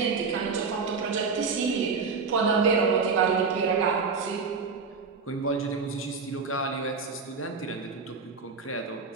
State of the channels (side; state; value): left; quieter; 5.0 dB